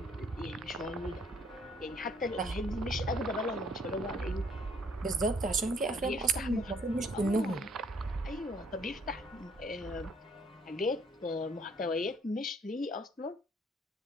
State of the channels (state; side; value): normal; both; correlation 0.63